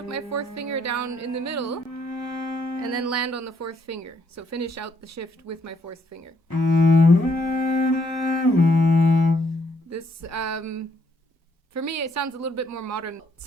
my fourth finger down in the middle, and then land on the fourth finger. So finish out the shift with my fourth finger. This, for me, it sounds a little bit more modern.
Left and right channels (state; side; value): normal; both; correlation 0.71